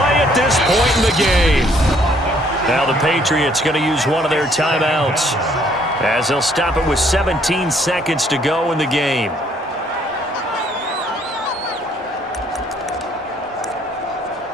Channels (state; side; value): normal; both; correlation 0.64